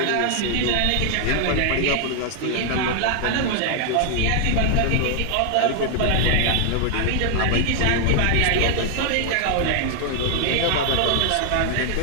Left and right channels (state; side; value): different; both; correlation 0.00